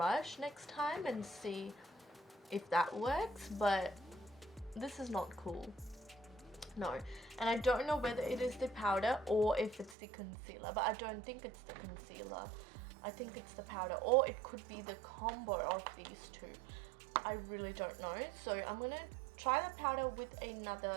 next time and see if that works, but this is not cool. No, and I don't know whether it is the powder or if it's the concealer, but I don't think it's the concealer. I think it's the powder, or it could be the combo of these two. I really don't know. So I'm going to try the powder with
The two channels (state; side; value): drops out; left; at 10.0 s